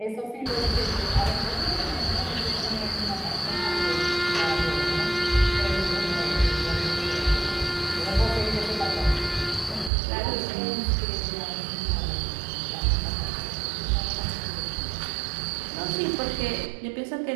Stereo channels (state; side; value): drops out; left; at 9.9 s